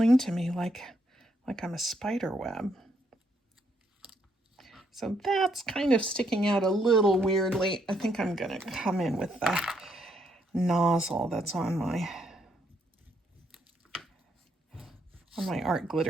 to me like I'm a spider web. So that's kind of sticking out a little weirdly. I think I'm gonna come in with the nozzle that's on my art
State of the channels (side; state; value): both; normal; correlation 0.74